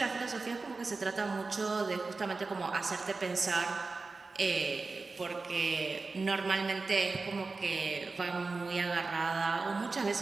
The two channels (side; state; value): left; quieter; 3.9 dB